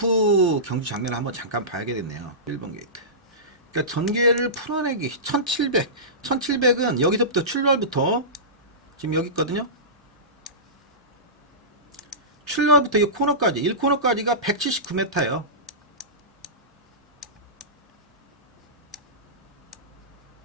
경주 장면을 한번 잠깐 봐야겠네요. 11번 게이트. 그러니까 전개를 풀어내기 1700은 여기서부터 출발부터 지금 여기 있거든요. 출발부터 이 코너까지 1코너까지가 179m예요.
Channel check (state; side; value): normal; both; correlation -0.20